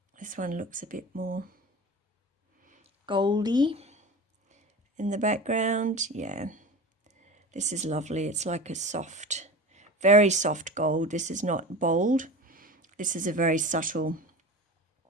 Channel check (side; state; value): both; normal; correlation 0.32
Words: This one looks a bit more goldy in the background. Yeah, this is lovely. It's like a soft, very soft gold. This is not bold. This is a very subtle